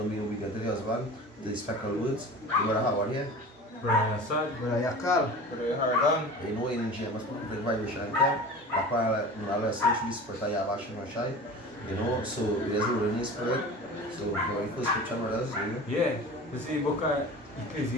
be obedient to the husband, the spectral words. The brother Howard here. Brother Assad, Brother Yakal, Brother Hardan. You know, in James, the vibration camp, that's why I listen to the spirit of Yahweh. You know, so there's a Holy Spirit. So, going first scripture, brothers, you know? Yeah, this is the book of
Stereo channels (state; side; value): normal; both; correlation 0.36